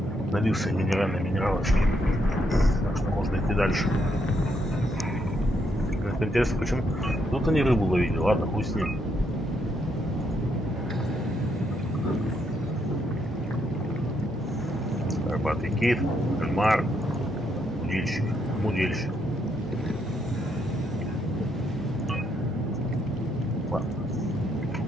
Налился минеральной минералочки, так что можно идти дальше. Это интересно, почему тут они рыбу ловили, ладно, хуй с ним. Горбатый кит, кальмар, мудильщик. Ладно,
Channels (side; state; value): both; normal; correlation 0.76